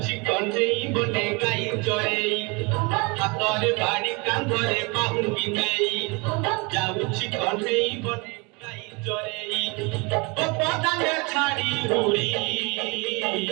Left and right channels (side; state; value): left; quieter; 29.1 dB